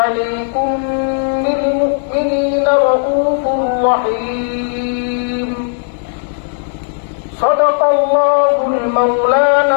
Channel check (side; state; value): right; silent; digital silence